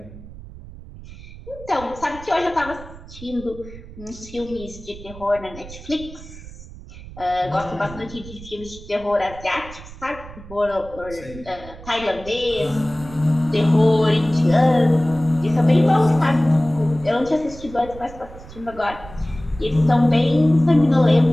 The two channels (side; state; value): right; noise; rumble, 16 dB below the sound